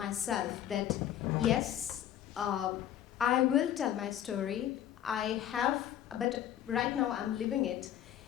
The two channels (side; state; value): right; quieter; 11.1 dB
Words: that yes, I will tell my story. I have, but right now I'm living it.